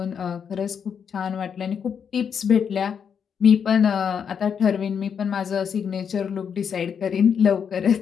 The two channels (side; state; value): right; quieter; 7.2 dB